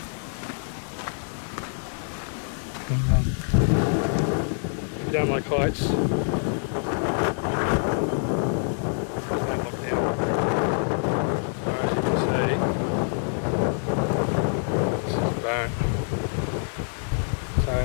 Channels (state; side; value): silent; right; digital silence